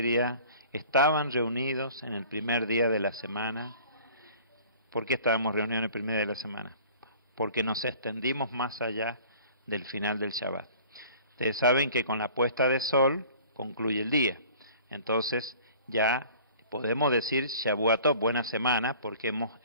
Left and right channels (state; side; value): inverted; both; correlation -0.48